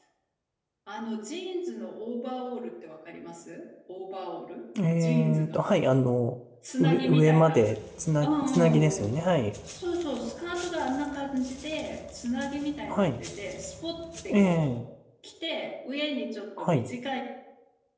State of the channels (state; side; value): identical; both; correlation 1.00